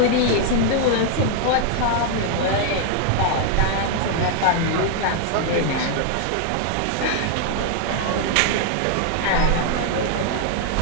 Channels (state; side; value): different; both; correlation 0.00